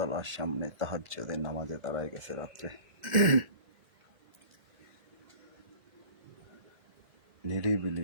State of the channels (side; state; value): left; late; 1.1 ms